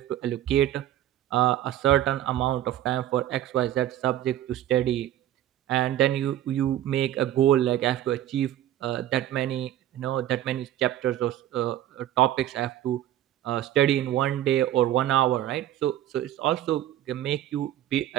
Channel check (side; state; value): left; quieter; 12.6 dB